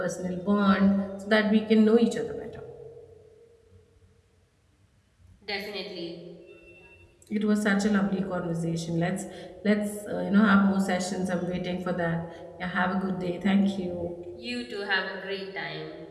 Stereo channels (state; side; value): identical; both; correlation 1.00